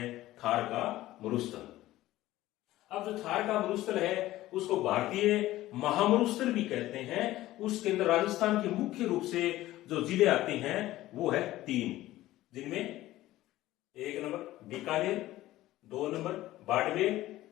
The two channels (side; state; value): right; quieter; 15.9 dB